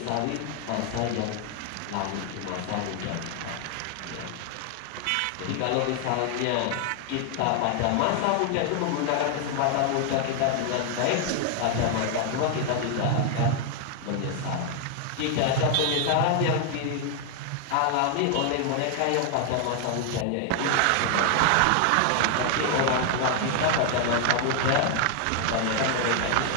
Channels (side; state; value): both; different; correlation 0.00